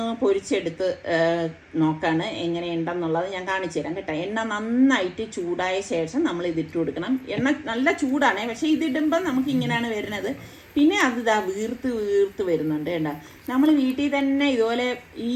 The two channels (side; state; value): both; identical; correlation 1.00